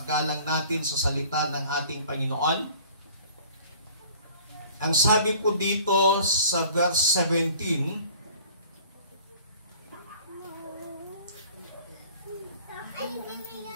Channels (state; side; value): inverted; both; correlation -0.49